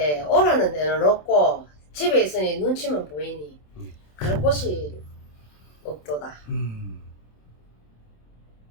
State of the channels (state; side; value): late; right; 27 ms